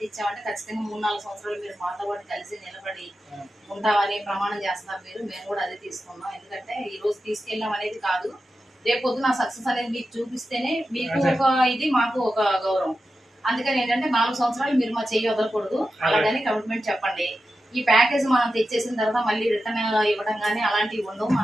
ఇచ్చామంటే ఖచ్చితంగా 3-4 సంవత్సరాలు మీరు మాతో పాటు కలిసి నిలబడి ఉంటామని ప్రమాణం చేస్తున్నారు మీరు. మేము కూడా అదే తీసుకున్నాం. ఎందుకంటే ఈ రోజు తీసుకెళ్ళాం అనేది కాదు, రేపు పొద్దున సక్సెస్ అనేది మీకు చూపిస్తేనే మీకు ఒక ఇది, మాకు ఒక గౌరవం. అందుకని ఏంటంటే 4 సంవత్సరాలు మీరు మా చెయ్యి వదలకూడదు, అలాగని కమిట్మెంట్ చెప్పండి. ఈ ప్యాకేజ్ మనం తెచ్చేసిన తర్వాత మళ్ళీ రిటర్న్ ఇవ్వడం కానీ అలాంటివి ఉండవు.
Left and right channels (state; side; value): normal; both; correlation 0.91